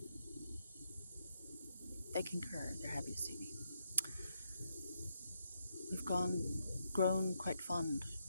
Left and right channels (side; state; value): both; inverted; correlation -0.79